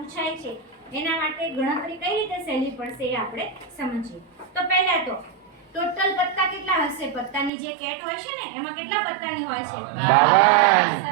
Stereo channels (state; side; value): drops out; left; at 7.5 s